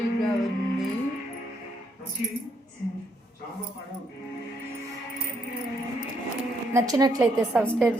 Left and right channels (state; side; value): normal; both; correlation 0.74